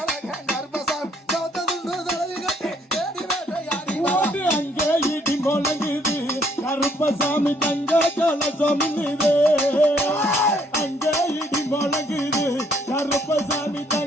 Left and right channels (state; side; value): normal; both; correlation 0.66